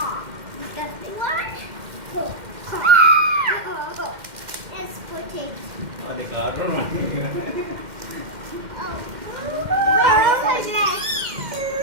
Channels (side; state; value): left; late; 2.1 ms